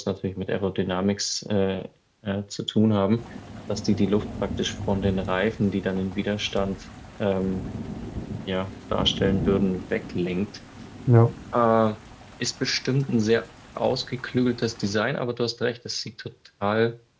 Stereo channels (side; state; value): both; identical; correlation 1.00